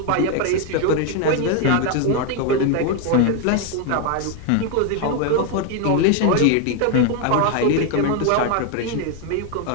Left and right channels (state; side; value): different; both; correlation 0.01